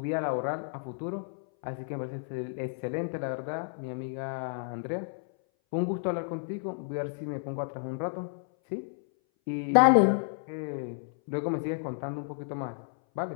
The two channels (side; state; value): right; silent; 57 dB below the other